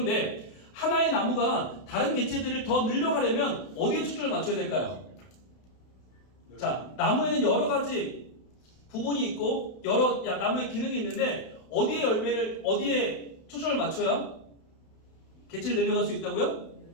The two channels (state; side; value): late; right; 32 ms